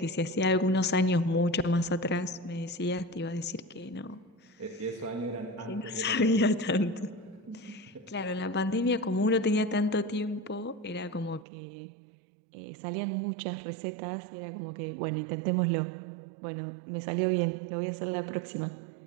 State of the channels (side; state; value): left; drops out; at 11.5 s